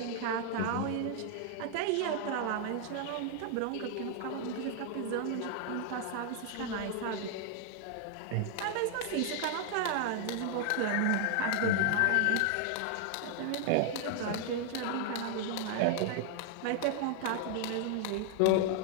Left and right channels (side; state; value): both; different; correlation 0.00